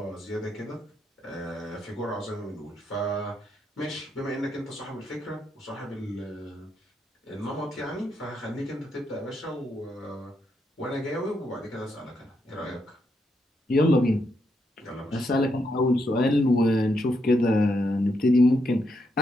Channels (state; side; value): normal; both; correlation 0.79